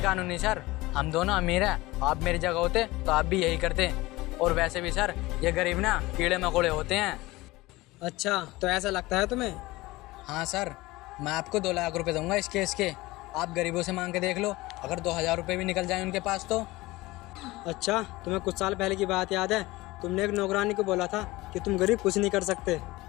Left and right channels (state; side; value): quieter; right; 20.0 dB